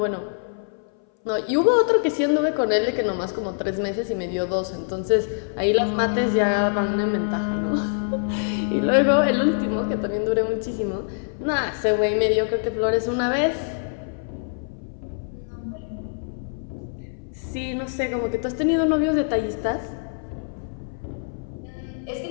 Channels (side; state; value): right; silent; 59 dB below the other